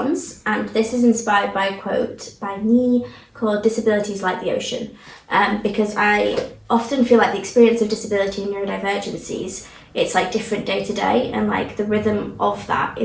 and this is inspired by a quote by me called "Disability is like the ocean," because I often feel like the experience of disability and neurodivergencies, it's like different day to day, and like the rhythm of that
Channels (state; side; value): identical; both; correlation 1.00